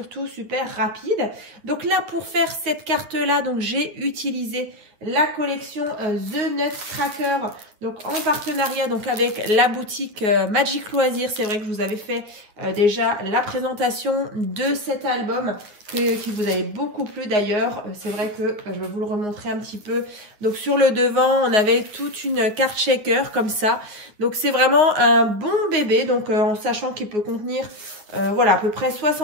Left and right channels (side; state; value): left; late; 9.6 ms